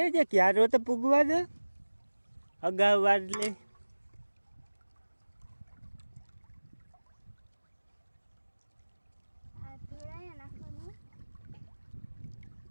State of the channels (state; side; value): inverted; both; correlation -1.00